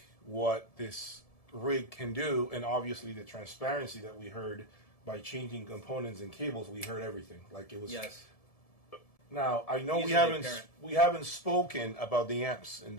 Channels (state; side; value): late; right; 1.7 ms